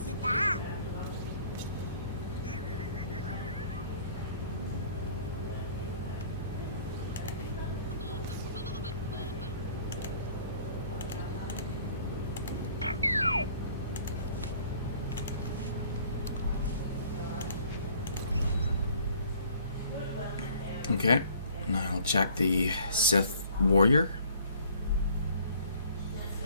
Okay, now I'll check the Sith Warrior.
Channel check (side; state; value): both; inverted; correlation -0.55